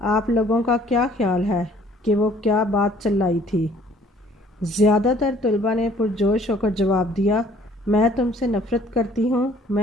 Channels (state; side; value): normal; both; correlation 0.57